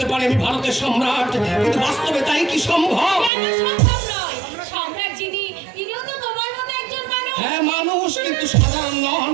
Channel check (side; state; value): left; drops out; at 3.3 s